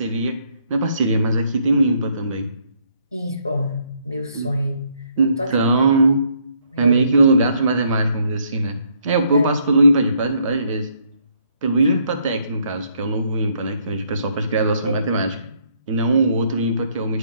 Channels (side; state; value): both; inverted; correlation -0.70